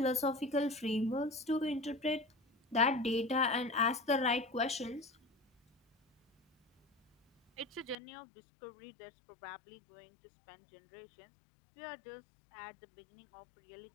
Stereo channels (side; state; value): right; drops out; at 8.0 s